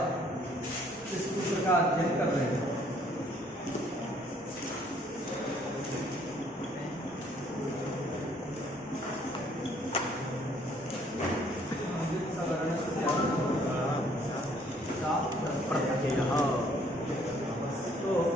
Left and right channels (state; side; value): normal; both; correlation 0.62